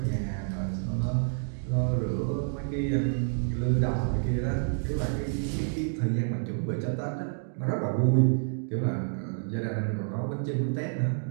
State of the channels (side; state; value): left; silent; digital silence